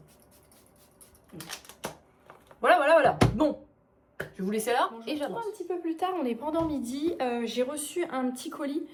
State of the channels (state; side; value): identical; both; correlation 1.00